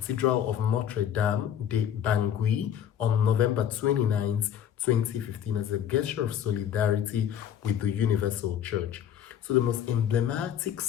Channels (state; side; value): quieter; right; 9.6 dB